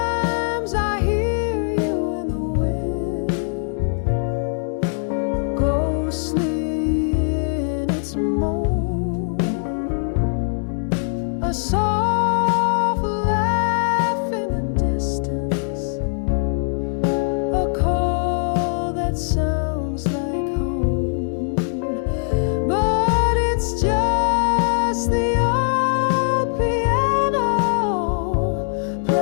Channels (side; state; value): right; silent; digital silence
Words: a soft laugh in the distance, a call that sounds like home, but it's just the old piano